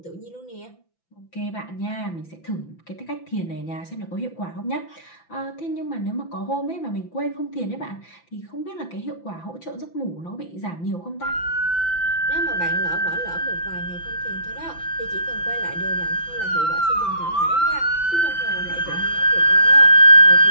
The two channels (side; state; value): right; late; 5.9 ms